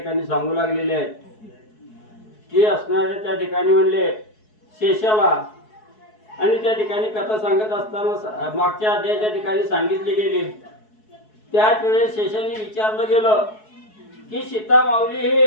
सांगू लागलेले आहेत की असणाऱ्या त्या ठिकाणी म्हणले शेषाला आणि त्या ठिकाणी कथा सांगत असताना मागच्या अध्यायाच्या ठिकाणी सांगितली गेली त्याच वेळेस शेषाने विचारलं गेलं की सीता माऊली हे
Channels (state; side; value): late; right; 4.7 ms